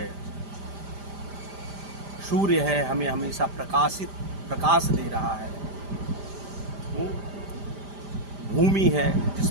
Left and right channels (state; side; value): late; left; 5.0 ms